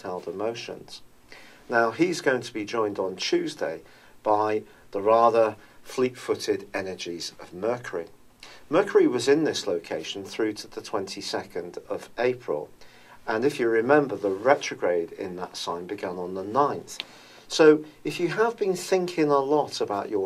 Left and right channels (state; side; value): identical; both; correlation 1.00